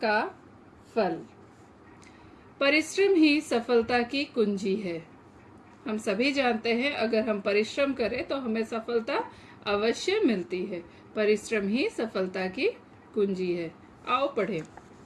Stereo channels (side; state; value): both; identical; correlation 1.00